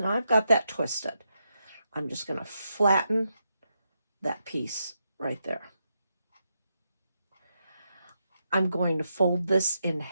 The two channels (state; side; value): inverted; both; correlation -0.84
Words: now I've got that twisted. I'm just going to flatten that piece right there. I'm going to fold this in